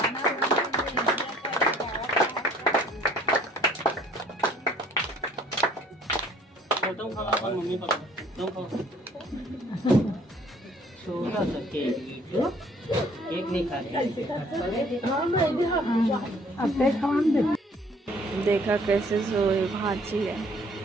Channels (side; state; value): both; normal; correlation 0.58